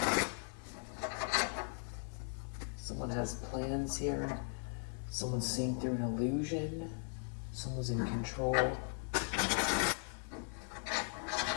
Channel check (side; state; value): right; silent; 52 dB below the other